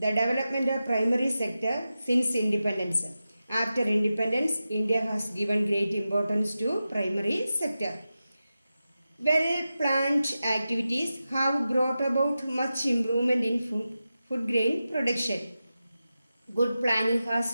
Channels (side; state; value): both; inverted; correlation -0.92